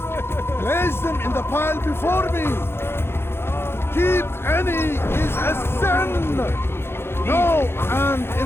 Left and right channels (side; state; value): right; late; 0.11 ms